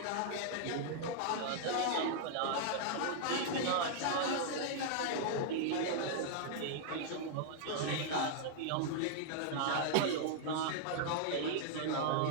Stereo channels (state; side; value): different; both; correlation -0.01